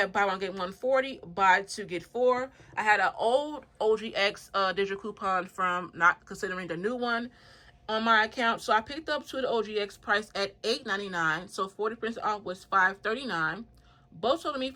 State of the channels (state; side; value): identical; both; correlation 1.00